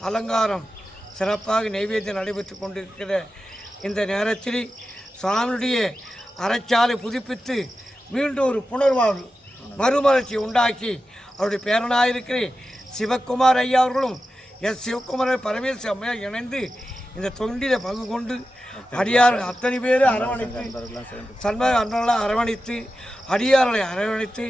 அலங்காரம் சிறப்பாக நைவேத்தியம் நடைபெற்று கொண்டிருக்கிற இந்த நேரத்தில் சுவாமியுடைய அறச்சாலை புதுப்பித்து மீண்டும் ஒரு புனர்வாழ்வு மறுமலர்ச்சி உண்டாக்கி அவருடைய பேரனாயிருக்கிற சிவக்குமார் ஐயா அவர்களும் சிவக்குமார் பரமேஸ்வர அம்மையார் இணைந்து இந்த தொண்டில் பங்கு கொண்டு அடியார் அத்தனை பேர் அரவணைத்து சண்பக அன்றெல்லாம் அரவணைத்து அடியார்களை அரவணைத்து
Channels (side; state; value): both; normal; correlation 0.92